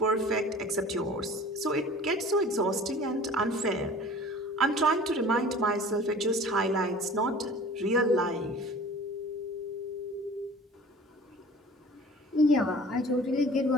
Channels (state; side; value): normal; both; correlation 0.44